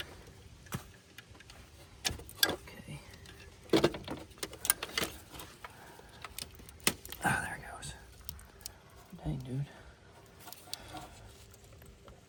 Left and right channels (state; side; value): identical; both; correlation 1.00